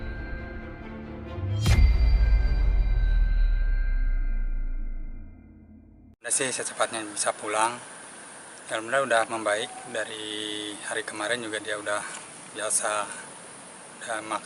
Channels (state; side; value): identical; both; correlation 1.00